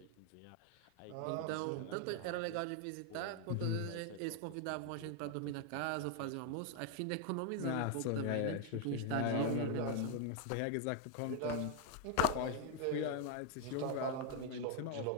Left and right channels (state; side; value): different; both; correlation 0.01